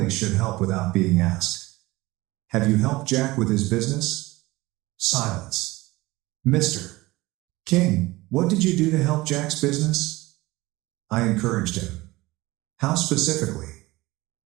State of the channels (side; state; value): left; quieter; 20.2 dB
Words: should help without being asked. Have you helped Jack with his business? Silence. Mr. King, what did you do to help Jack's business? I encouraged him. How specifically?